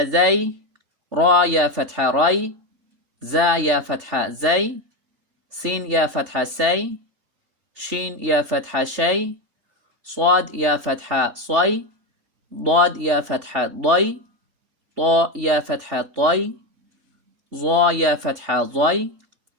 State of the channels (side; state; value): left; late; 3.4 ms